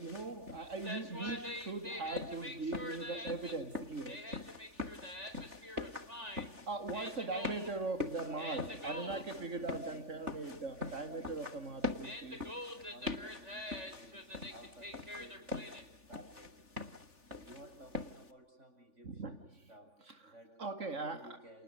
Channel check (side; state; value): left; late; 3.4 ms